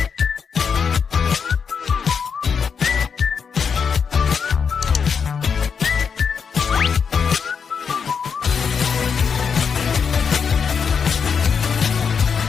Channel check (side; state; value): right; quieter; 6.3 dB